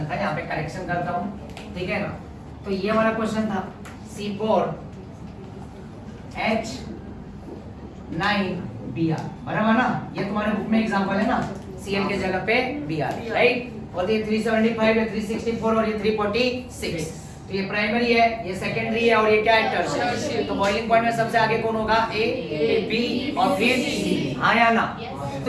था, यहाँ पे करेक्शन करता हूँ, ठीक है ना। तो ये वाला क्वेश्चन था C4H9Br, बराबर ना। ये तुम्हारे बुक में एग्जांपल है ना, Cl के जगह पे Br राइट। और ये 375 है, 364 और ये 346। तो ये प्राइमरी है, ये सेकेंडरी है और ये क्या है? टर्शियरी। तो बॉइलिंग पॉइंट में सबसे आगे कौन होगा? ए, बी और फिर सी। हाँ या ना।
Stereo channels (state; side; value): identical; both; correlation 1.00